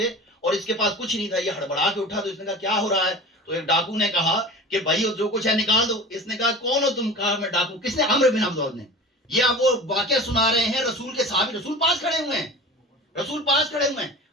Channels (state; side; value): normal; both; correlation 0.36